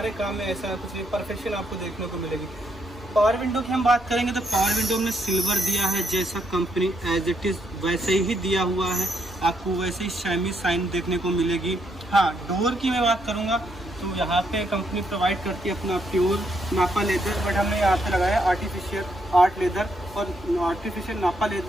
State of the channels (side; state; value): both; normal; correlation 0.76